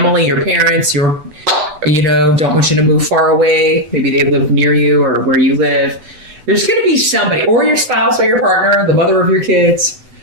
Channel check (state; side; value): late; left; 8.0 ms